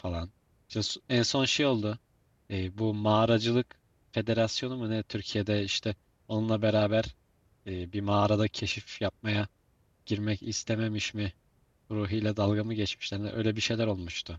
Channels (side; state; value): both; identical; correlation 1.00